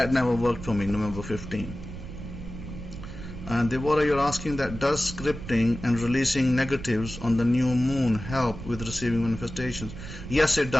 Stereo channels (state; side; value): noise; right; rumble, 11 dB below the sound